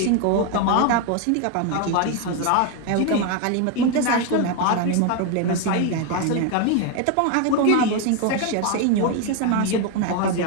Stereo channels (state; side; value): different; both; correlation 0.01